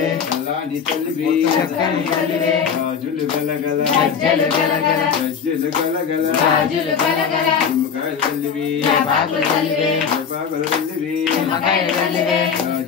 चलानी तल्लिवे चक्कनी तल्लिवे రాజులు గలగల గజ్జలు గలగల గజ్జలు గలగల రాజులు గలగల నిమ్మకాయలు తల్లివి జపాకులు తల్లివే జపాకులు తల్లివి నిమ్మకాయలు తల్లివే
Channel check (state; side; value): quieter; right; 6.8 dB